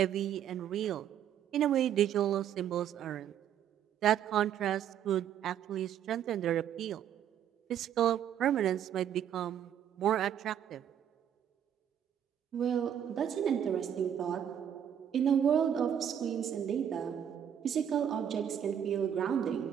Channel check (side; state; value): left; quieter; 9.4 dB